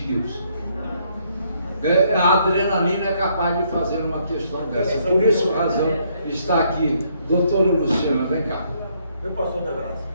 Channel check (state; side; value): inverted; both; correlation -0.70